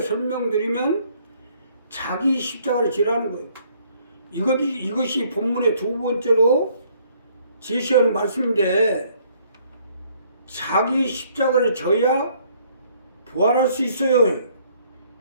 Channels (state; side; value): inverted; both; correlation -0.64